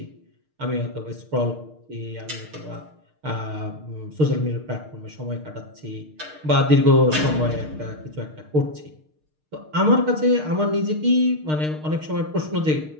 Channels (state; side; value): late; left; 6.5 ms